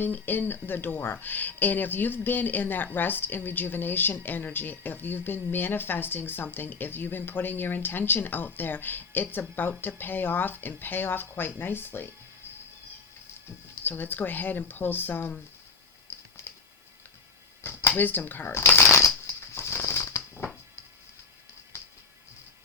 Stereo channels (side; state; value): right; quieter; 4.7 dB